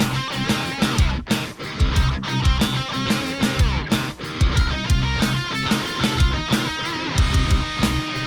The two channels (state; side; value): identical; both; correlation 1.00